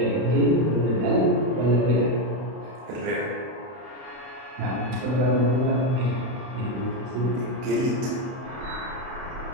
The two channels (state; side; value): late; left; 31 ms